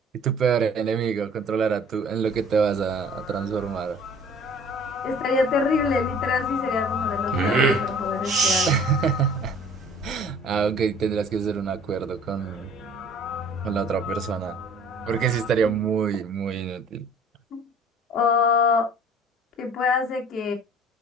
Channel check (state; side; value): normal; both; correlation 0.50